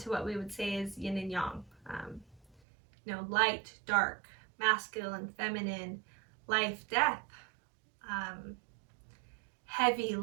what we would say is yin and yang. Light, dark, masculine, feminine, life, death, heavy,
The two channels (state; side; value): drops out; left; at 2.6 s